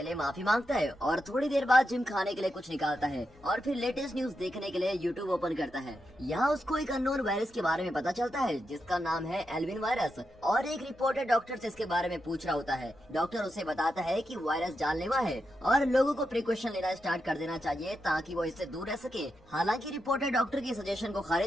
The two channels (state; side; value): noise; left; hum, 28 dB below the sound